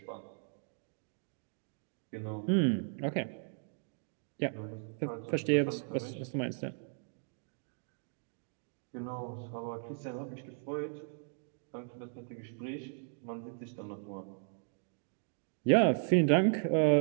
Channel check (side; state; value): left; silent; 54 dB below the other